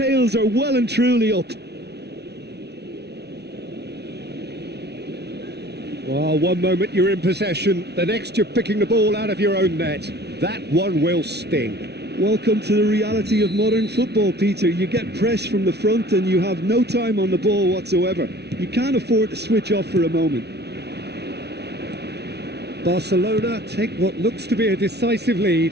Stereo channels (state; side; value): late; left; 0.49 ms